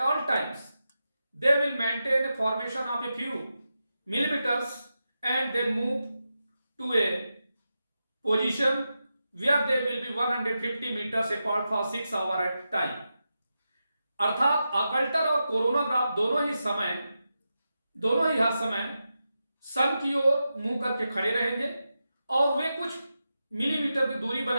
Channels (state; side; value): inverted; both; correlation -0.89